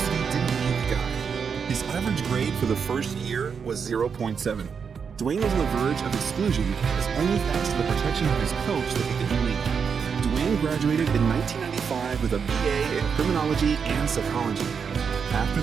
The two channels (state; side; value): quieter; left; 6.3 dB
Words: didn't need the guy. His average grade for the first year was 0.7. Dwayne was on the verge of exclusion, and it was only thanks to the protection of his coach that he didn't leave. Dwayne graduated in 1995 with a BA in criminology and psychology. After